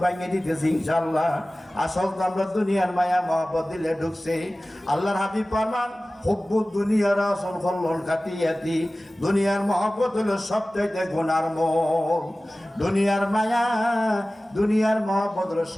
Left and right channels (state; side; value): normal; both; correlation 0.97